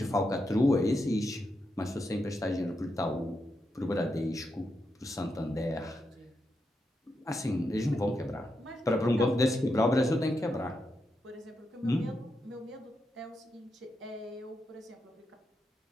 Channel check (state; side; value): normal; both; correlation 0.85